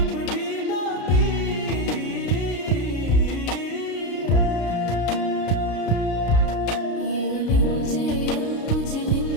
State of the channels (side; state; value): right; late; 33 ms